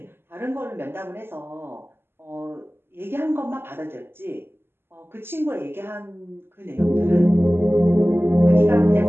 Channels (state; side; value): late; left; 0.11 ms